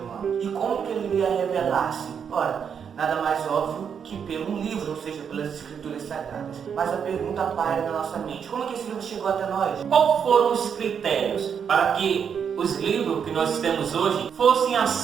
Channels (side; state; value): left; quieter; 7.3 dB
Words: humano. E como que ele iria revelar-se? Ora, nada mais óbvio que pelo livro, ou seja, pelas escrituras sagradas. Mas a pergunta paira na nossa mente: como é que esse livro chegou até nós? Quais foram os critérios para que os livros que nós temos hoje fossem